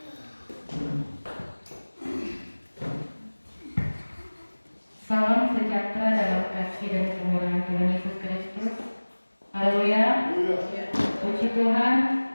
Salam sejahtera dalam kasih dan kemurahan Tuhan Yesus Kristus. Haleluya. Puji Tuhan.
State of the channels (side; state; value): both; inverted; correlation -1.00